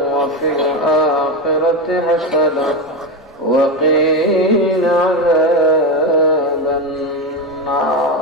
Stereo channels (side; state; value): both; normal; correlation 0.14